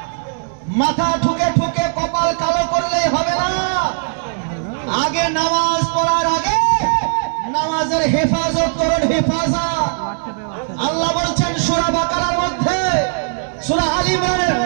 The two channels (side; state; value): left; silent; digital silence